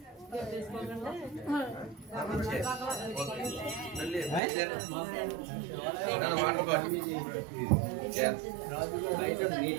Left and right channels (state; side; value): drops out; left; at 4.4 s